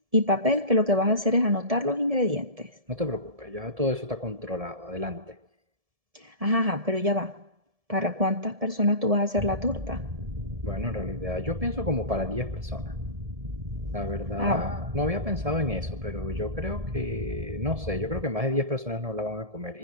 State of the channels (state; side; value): late; left; 1.7 ms